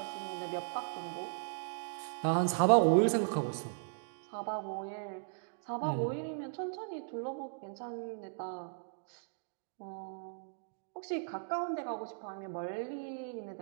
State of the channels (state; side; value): silent; left; digital silence